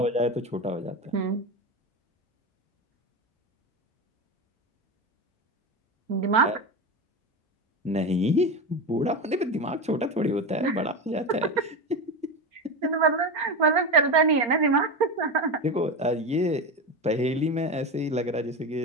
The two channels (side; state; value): both; normal; correlation 0.20